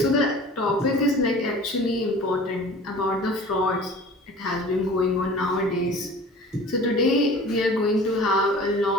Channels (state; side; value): normal; both; correlation 0.43